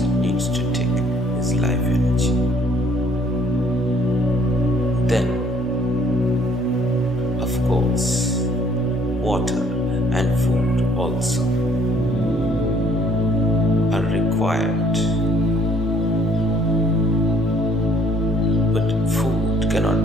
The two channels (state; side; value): normal; both; correlation 0.60